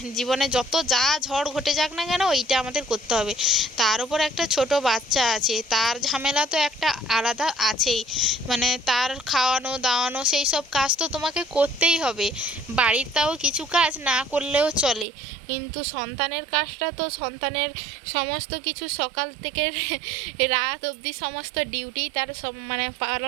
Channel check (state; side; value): drops out; left; at 15.1 s